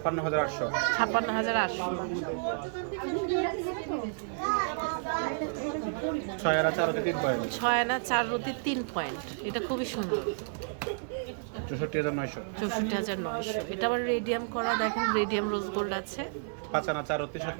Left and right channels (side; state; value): left; silent; digital silence